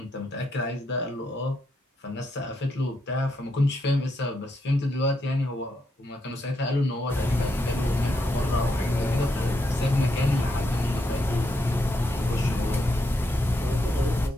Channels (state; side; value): normal; both; correlation 0.80